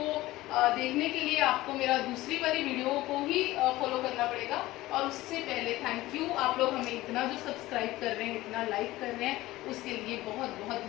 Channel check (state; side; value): quieter; right; 17.6 dB